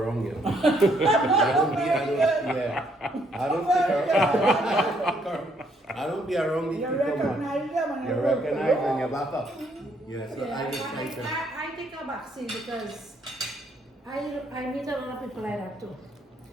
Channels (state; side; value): normal; both; correlation 0.70